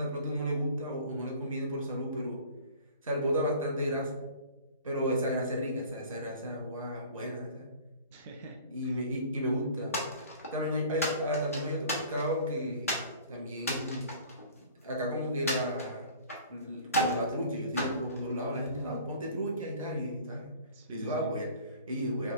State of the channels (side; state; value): both; inverted; correlation -0.46